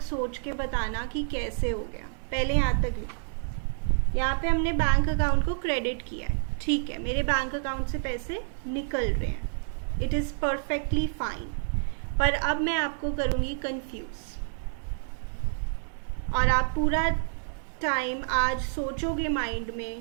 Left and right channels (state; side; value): silent; left; digital silence